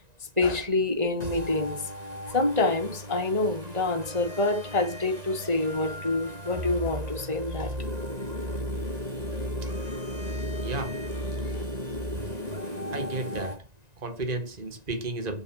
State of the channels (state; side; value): late; left; 1.9 ms